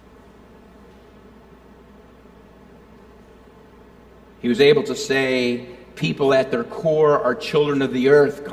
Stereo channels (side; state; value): both; identical; correlation 1.00